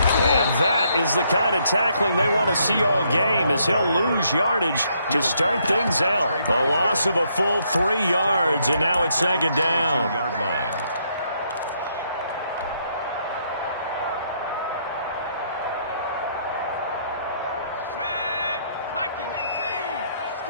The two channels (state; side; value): inverted; both; correlation -0.72